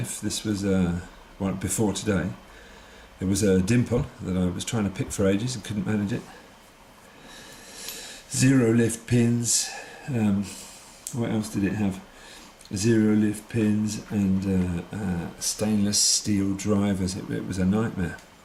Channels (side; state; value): both; identical; correlation 1.00